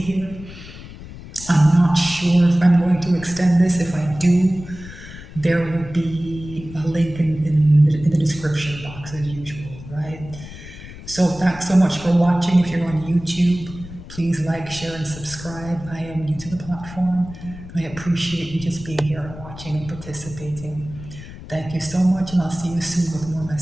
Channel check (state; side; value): noise; left; rumble, 15 dB below the sound